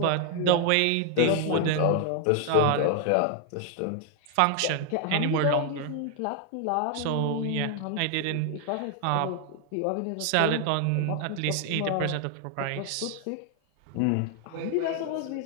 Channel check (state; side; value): different; both; correlation 0.00